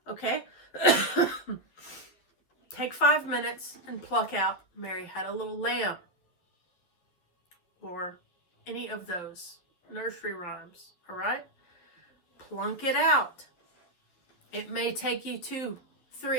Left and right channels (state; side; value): late; right; 11 ms